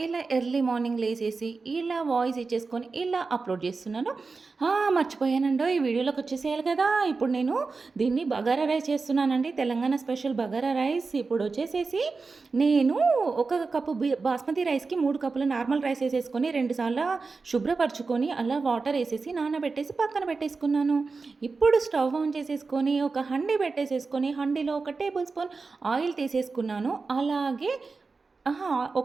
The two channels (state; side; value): quieter; left; 4.3 dB